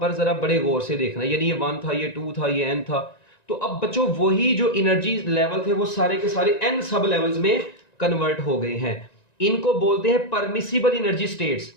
जरा बड़े गौर से देखना, यानी ये 1 था, ये 2 था, ये n था। तो अब बच्चों वही जो एनर्जी लेवल थे वो सारे के सारे n सब लेवल्स में कन्वर्ट हो गए हैं। इनको बोलते हैं परमिसिबल एनर्जी स्टेट्स,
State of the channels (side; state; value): right; late; 1.9 ms